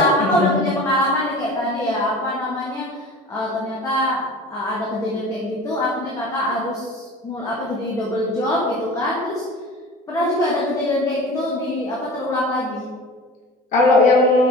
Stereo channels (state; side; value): normal; both; correlation 0.38